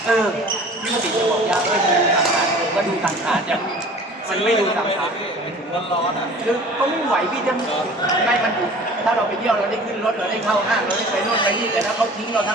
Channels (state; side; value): normal; both; correlation 0.45